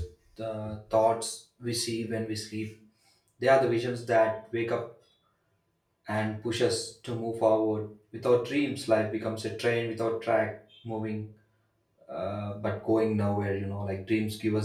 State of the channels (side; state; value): both; identical; correlation 1.00